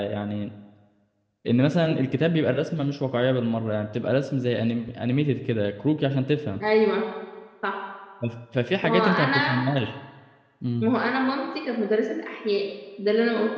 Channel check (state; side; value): identical; both; correlation 1.00